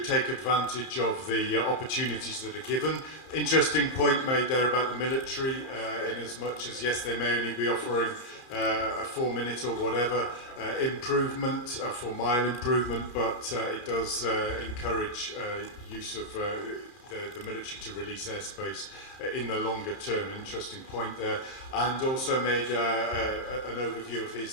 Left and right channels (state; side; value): late; right; 30 ms